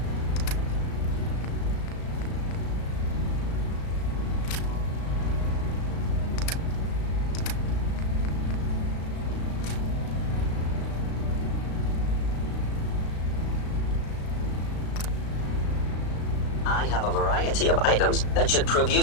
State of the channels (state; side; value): late; right; 35 ms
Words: I have a variety of items that should prove